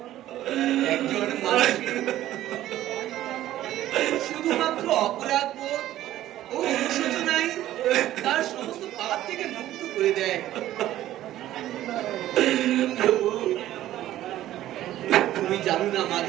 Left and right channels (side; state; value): left; quieter; 13.7 dB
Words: একজন মানুষের শুধুমাত্র অপরাধ বোধ ও অনুশোচনাই তার সমস্ত পাপ থেকে মুক্ত করে দেয়। তুমি জানো না